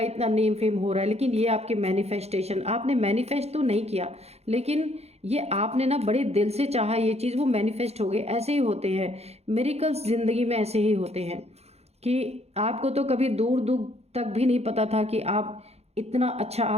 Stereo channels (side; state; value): left; late; 0.31 ms